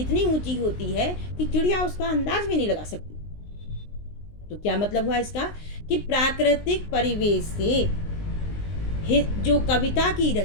ऊंची होती है कि चिड़िया उसका अंदाज भी नहीं लगा सकती। तो क्या मतलब हुआ इसका, कि प्राकृतिक परिवेश से जो कविता की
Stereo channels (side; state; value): right; late; 19 ms